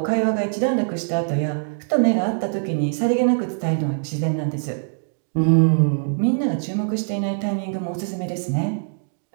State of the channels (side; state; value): left; silent; digital silence